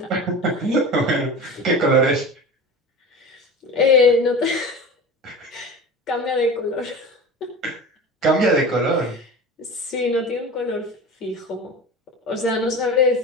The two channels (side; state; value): both; normal; correlation 0.32